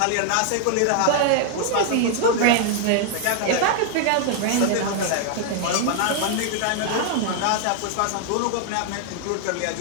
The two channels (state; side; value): different; both; correlation 0.00